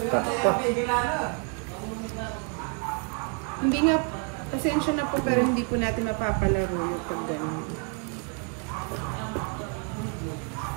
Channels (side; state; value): left; quieter; 35.0 dB